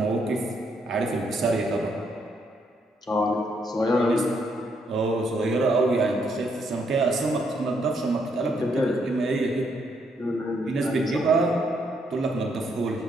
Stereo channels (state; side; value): normal; both; correlation 0.74